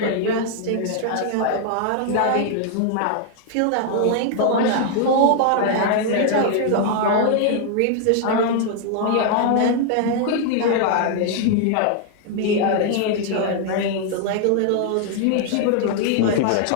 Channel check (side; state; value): both; different; correlation 0.00